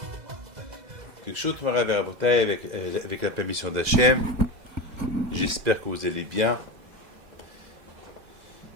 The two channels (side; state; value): left; late; 2.0 ms